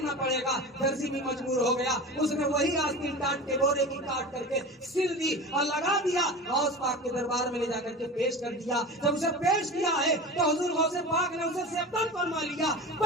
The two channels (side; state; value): both; normal; correlation 0.31